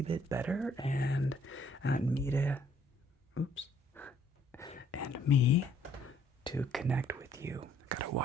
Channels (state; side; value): normal; both; correlation 0.64